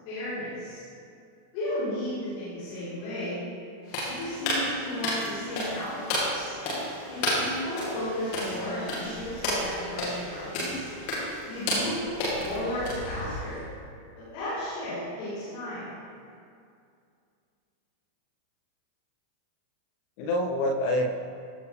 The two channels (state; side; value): late; right; 39 ms